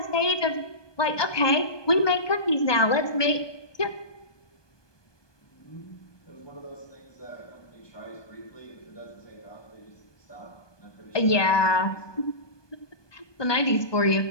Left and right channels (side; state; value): right; late; 1.2 ms